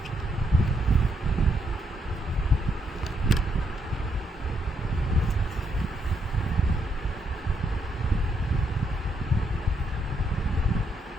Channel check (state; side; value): normal; both; correlation 0.76